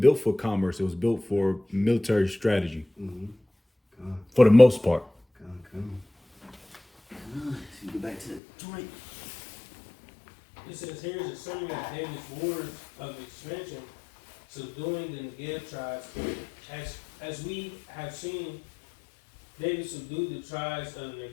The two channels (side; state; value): right; drops out; at 8.4 s